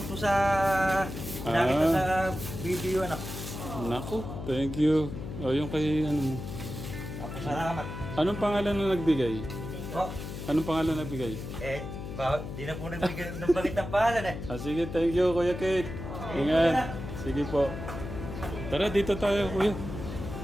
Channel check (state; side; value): noise; left; hum, 8 dB below the sound